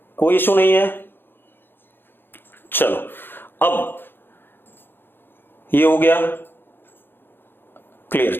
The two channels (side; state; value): right; late; 0.10 ms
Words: कोई इशू नहीं है? चलो अब ये हो गया क्लियर।